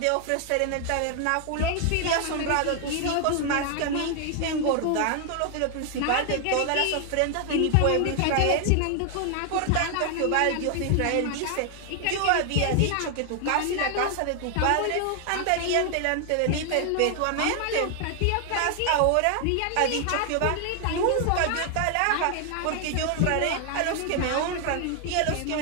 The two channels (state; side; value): different; both; correlation 0.00